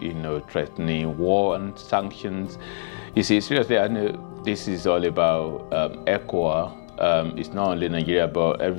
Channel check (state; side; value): silent; right; digital silence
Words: threatening war and sanctions. You see, seriously, I know this is all about ECOWAS. It's not only Nigeria, but